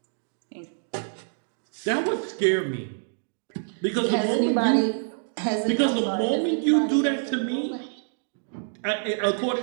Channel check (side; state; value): left; silent; digital silence